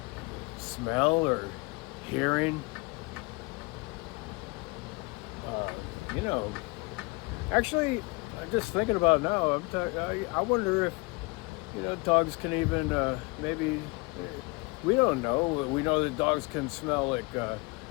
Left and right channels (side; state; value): right; quieter; 26.5 dB